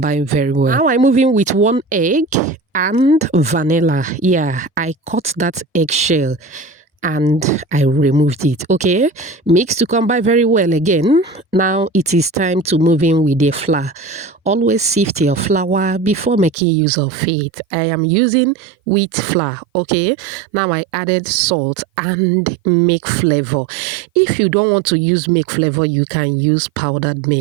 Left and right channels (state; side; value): drops out; left; at 16.6 s